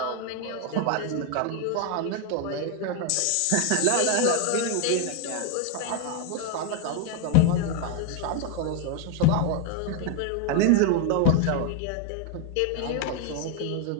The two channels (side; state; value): both; different; correlation 0.01